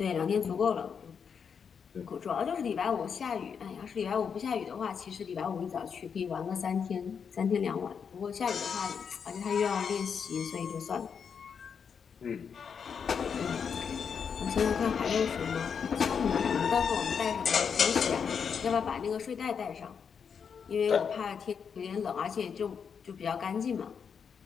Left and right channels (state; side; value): quieter; right; 6.7 dB